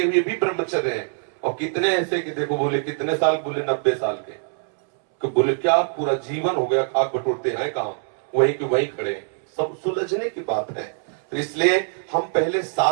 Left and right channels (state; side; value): silent; left; 63 dB below the other